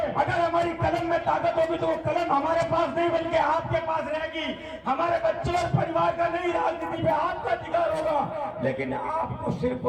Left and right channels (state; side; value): identical; both; correlation 1.00